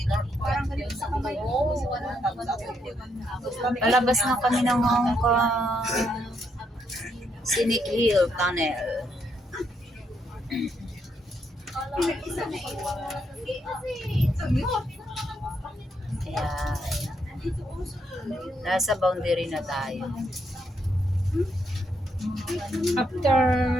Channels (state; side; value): normal; both; correlation 0.76